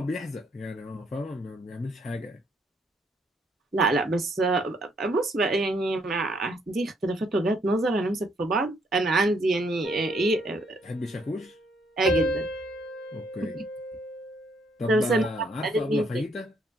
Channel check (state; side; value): normal; both; correlation 0.70